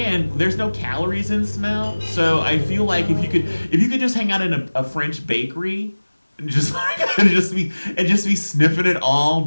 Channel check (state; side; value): inverted; both; correlation -1.00